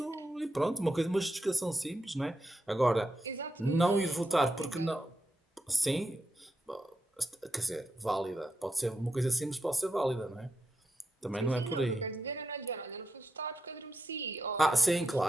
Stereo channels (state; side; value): normal; both; correlation 0.85